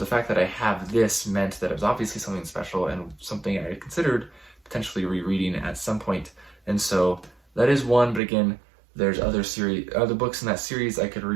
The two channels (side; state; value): left; drops out; at 8.2 s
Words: fact that I have this meant that it was obviously something special and something I had considered potentially rereading at some point, and so that is one. But again, there's other books in that series I could